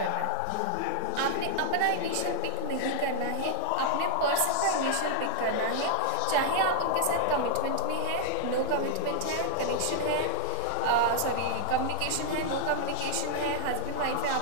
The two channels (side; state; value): both; different; correlation 0.00